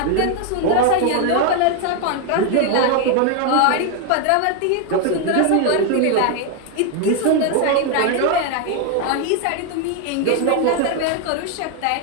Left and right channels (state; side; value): different; both; correlation 0.01